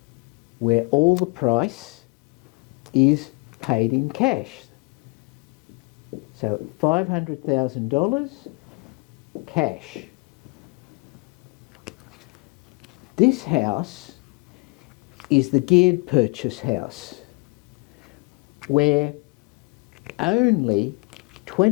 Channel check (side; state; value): right; quieter; 31.2 dB